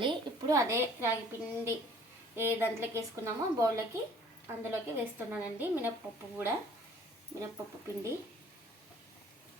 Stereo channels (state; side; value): normal; both; correlation 0.55